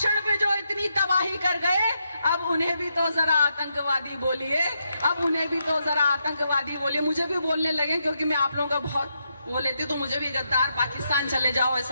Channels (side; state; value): both; inverted; correlation -0.82